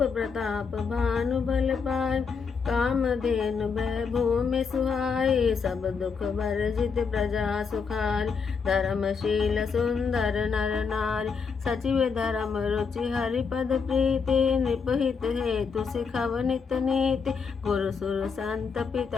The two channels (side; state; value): right; quieter; 5.6 dB